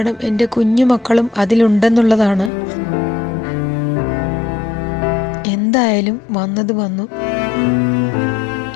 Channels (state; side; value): drops out; right; at 2.5 s